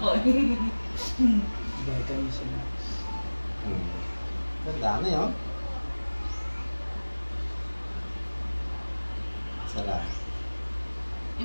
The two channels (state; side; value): inverted; both; correlation -1.00